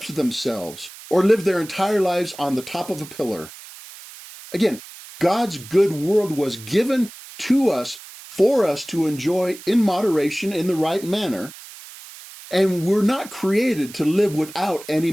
themselves or lived their entire lives on the top of a pillar. Again, God's good world was given to us for us to enjoy in moderation in the right manner, and we're not created to live without any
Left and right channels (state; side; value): noise; right; hiss, 17 dB below the sound